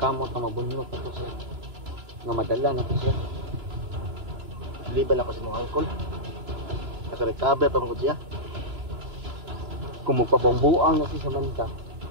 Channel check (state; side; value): late; left; 3.0 ms